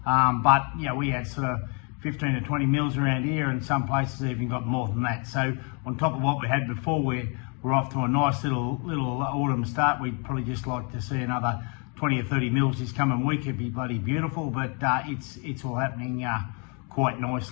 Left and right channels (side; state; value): right; quieter; 35.4 dB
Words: But you know, we had sort of 15 to 20 mils around here, and some places even got more than that. So on top of what we had before, we're off to a nice little autumn start. We'd probably just like to see another 20 or 30 mils this coming week. It'd be bloody beautiful, but it's all happening quite